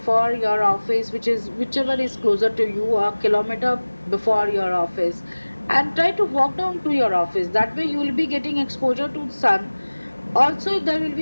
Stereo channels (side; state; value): both; inverted; correlation -1.00